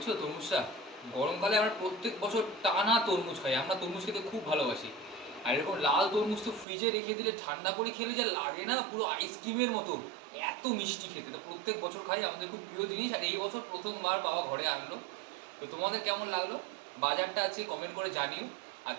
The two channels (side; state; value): left; drops out; at 6.7 s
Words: তরমুজটা। গরমকালে আমরা প্রত্যেক বছর টানা তরমুজ খাই, আমরা তরমুজ খেতে খুব ভালোবাসি। আর এরকম লাল তরমুজ তো ফ্রিজে রেখে দিলে ঠান্ডা করে খেলে যা লাগে না, পুরো আইসক্রিমের মতো, এত মিষ্টি খেতে। তো প্রত্যেক বছর খাই, আমাদের খুব প্রিয় জিনিস। আর এই বছর প্রথমবার বাবা ঘরে আনলো। তো তোমাদের কেমন লাগলো বাজারটা আছে কমেন্ট করে জানিও। আর